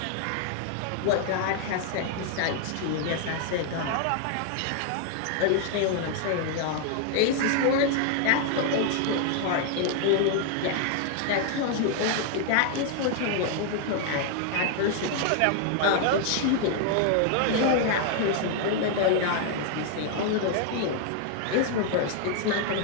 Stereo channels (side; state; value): both; different; correlation 0.00